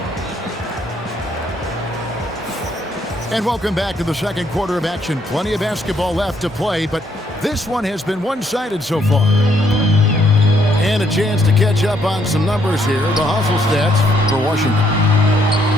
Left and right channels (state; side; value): normal; both; correlation 0.71